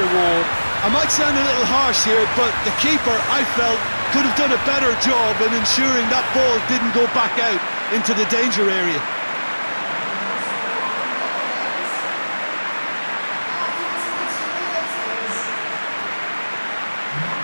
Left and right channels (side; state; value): both; inverted; correlation -1.00